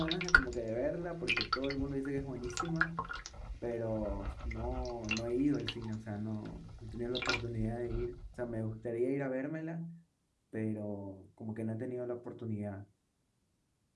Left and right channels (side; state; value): both; identical; correlation 1.00